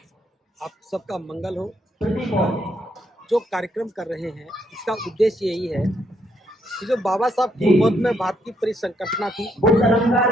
आप सबका मंगल हो। जो कार्यक्रम कर रहे हैं इसका उद्देश्य यही है कि जो बाबा साहब की मौत में भारत की परिसंकटना थी वो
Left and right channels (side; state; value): both; normal; correlation 0.74